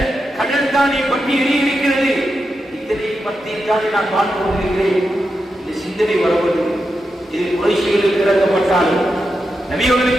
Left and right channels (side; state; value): both; normal; correlation 0.87